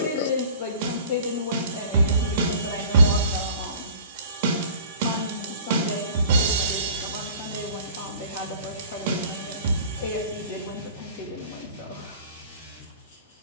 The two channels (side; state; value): both; inverted; correlation -0.46